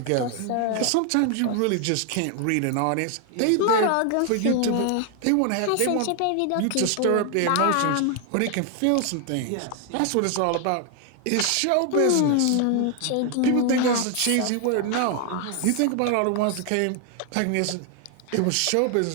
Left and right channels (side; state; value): both; different; correlation 0.00